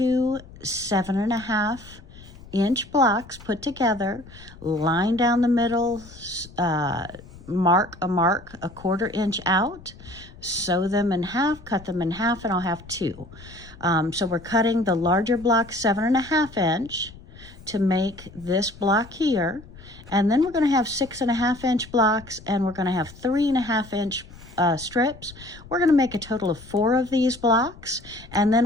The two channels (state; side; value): noise; left; rumble, 19 dB below the sound